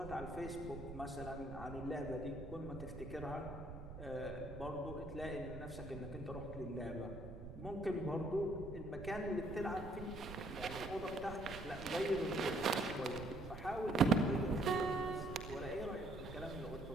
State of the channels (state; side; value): noise; right; rumble, 11 dB below the sound